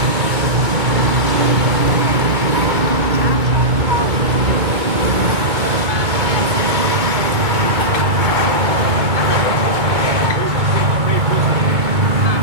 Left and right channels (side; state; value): left; late; 2.3 ms